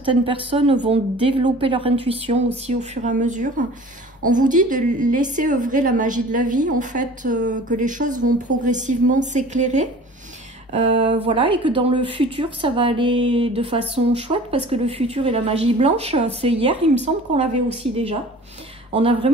personnes vont développer leur intuition aussi au fur et à mesure. On vous dit de laisser œuvrer la magie de la vie, en fait, que les choses vont progressivement s'éclairer. Voilà, et que dans le futur, ça va aller de façon chouette parce que le futur et la magie blanche, c'est hier, il me semble qu'on l'avait aussi déjà. On a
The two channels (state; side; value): normal; both; correlation 0.44